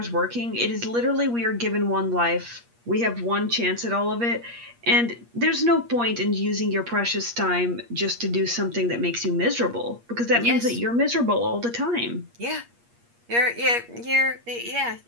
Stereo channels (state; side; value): late; left; 8.5 ms